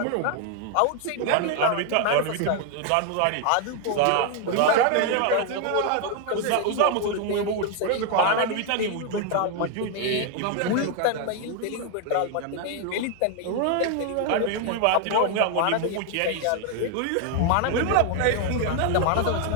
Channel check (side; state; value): both; different; correlation 0.00